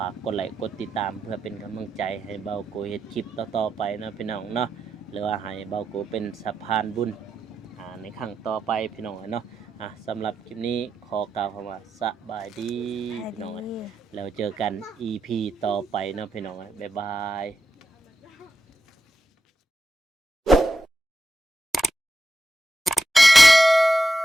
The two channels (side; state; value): both; normal; correlation 0.88